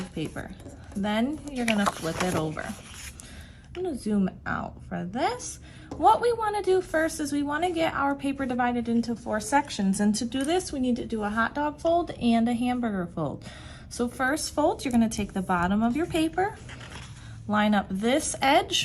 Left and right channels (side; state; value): both; identical; correlation 1.00